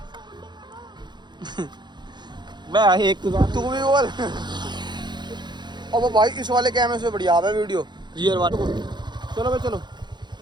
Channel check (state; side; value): late; left; 0.21 ms